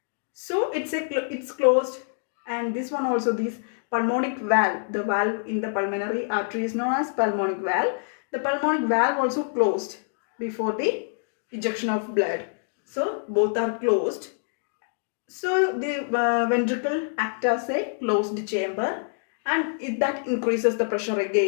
So it's closed, and this one also, this pulmonic valve, the valve in the pulmonary artery is known as pulmonic valve. The pulmonic valve also closed before the ejection of blood. So both are closed. So the ventricle acts as a closed chamber, and that increases the pressure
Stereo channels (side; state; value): right; silent; digital silence